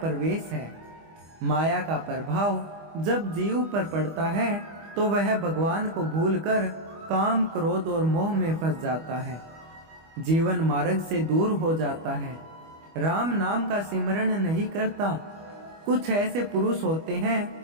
है। माया का प्रभाव जब जीव पर पड़ता है तो वह भगवान को भूलकर काम, क्रोध और मोह में फंस जाता है। जीवन मार्ग से दूर हो जाता है। राम नाम का सिमरण नहीं करता। कुछ ऐसे पुरुष होते हैं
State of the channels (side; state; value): left; late; 25 ms